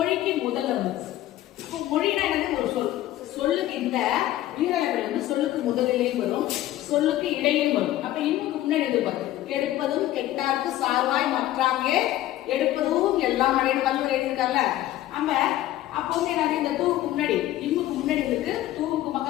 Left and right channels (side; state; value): right; quieter; 14.4 dB